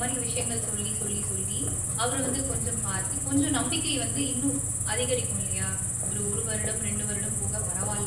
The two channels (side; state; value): both; identical; correlation 1.00